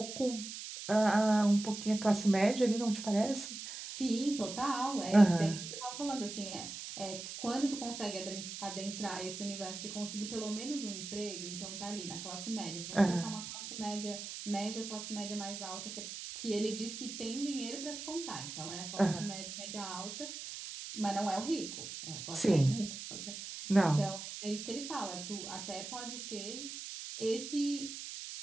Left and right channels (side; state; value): right; noise; hiss, 8 dB below the sound